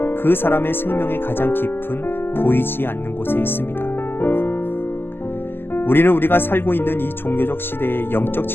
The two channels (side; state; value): right; late; 0.10 ms